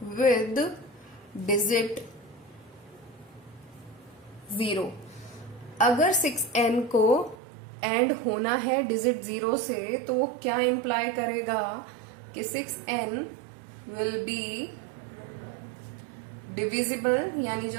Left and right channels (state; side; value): drops out; left; at 7.4 s